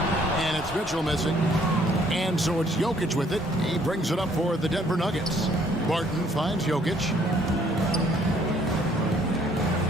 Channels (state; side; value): normal; both; correlation 0.63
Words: And it's Mitchell missing. And so it's Jokic with it. He brings it up for the Denver Nuggets. Barton finds Jokic.